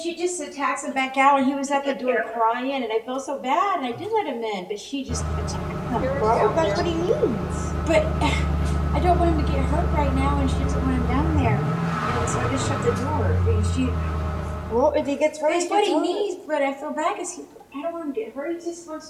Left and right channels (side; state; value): both; identical; correlation 1.00